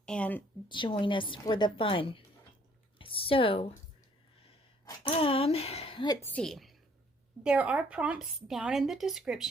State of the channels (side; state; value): both; normal; correlation 0.62